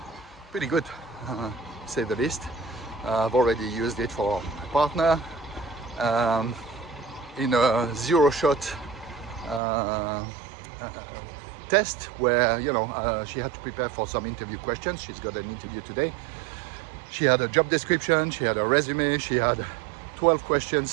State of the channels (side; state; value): left; drops out; at 9.6 s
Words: pretty good, to say the least. I've already used it for my partner in a 0-shot test where, you know, she had to prepare for some interview questions. She's got an interview today. She had a job description, she had a resume, she had 12